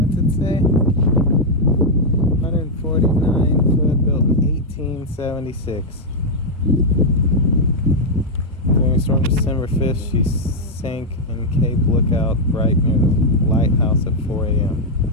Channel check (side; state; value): both; normal; correlation -0.03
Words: it say? 149 foot, built in 1876. During a storm December 5th, she sank in Cape Lookout right near the lighthouse at 4 a.m.